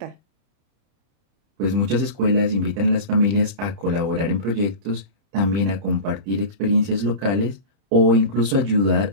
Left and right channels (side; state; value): left; late; 30 ms